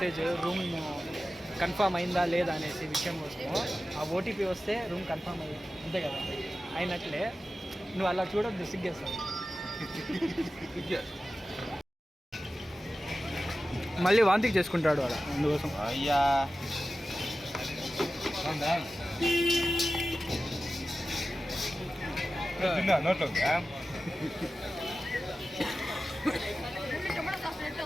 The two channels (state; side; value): normal; both; correlation 0.94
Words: రూమ్ కన్ఫామ్ అయిందా లేదా అనేసి విషయం కోసము. ఆ ఓటీపీ వస్తే రూమ్ కన్ఫామ్ అయ్యింది అంతే కదా, అయినట్లే. నువ్వు అలా చూడొద్దు, సిగ్గేస్తావు. మళ్ళీ వాంతికి చేసుకుంటాడు అలా, అందుకోసం. అయ్యా నోట్లో